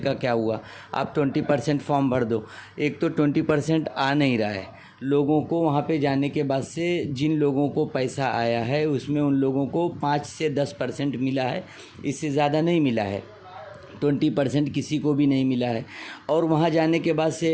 क्या हुआ, आप 20% फॉर्म भर दो। एक तो 20% आ नहीं रहा है लोगों को। वहाँ पे जाने के बाद से जिन लोगों को पैसा आया है उसमें उन लोगों को 5 से 10% मिला है, इससे ज़्यादा नहीं मिला है। 20% किसी को भी नहीं मिला है। और वहाँ जाने के बाद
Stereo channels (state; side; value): identical; both; correlation 1.00